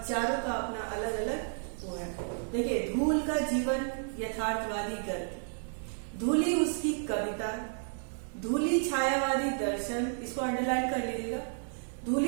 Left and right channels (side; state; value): left; silent; digital silence